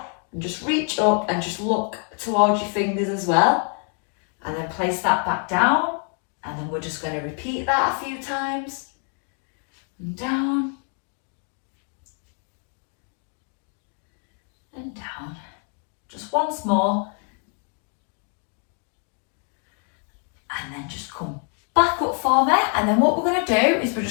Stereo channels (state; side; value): quieter; right; 39.1 dB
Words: and just reach up and just look towards your fingers as well. And then place that back down. And then we're just going to repeat that a few times. And down. And down. Just once more. And then just come back up for me. And then what we're going to do is we're